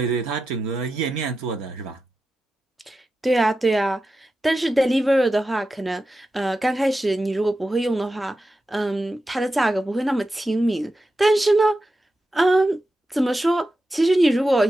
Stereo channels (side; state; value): both; normal; correlation 0.91